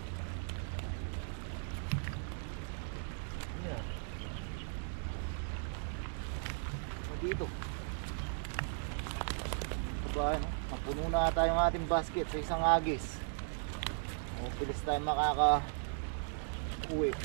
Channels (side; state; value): left; silent; digital silence